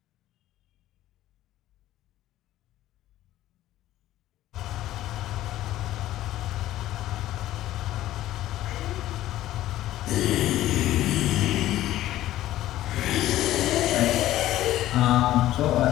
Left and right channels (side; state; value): right; quieter; 14.3 dB